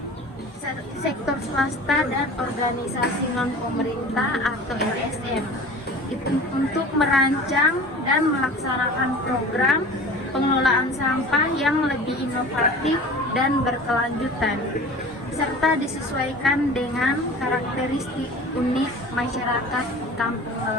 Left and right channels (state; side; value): normal; both; correlation 0.40